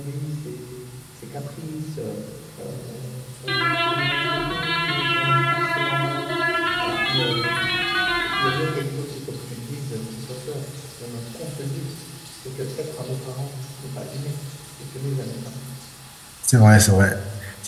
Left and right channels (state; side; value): identical; both; correlation 1.00